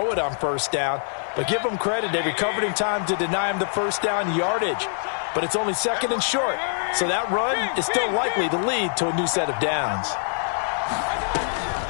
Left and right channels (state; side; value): silent; right; digital silence